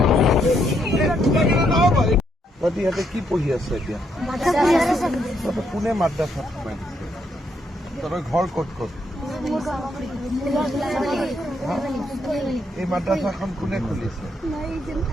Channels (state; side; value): normal; both; correlation 0.75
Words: ইহঁতে কি পঢ়ি আছে এতিয়া কোনে মাদ্ৰাছাত সোমাই দিছে তহঁতৰ ঘৰ ক'ত ক'ত এই মাদ্ৰাছাখন কোনে খুলিছে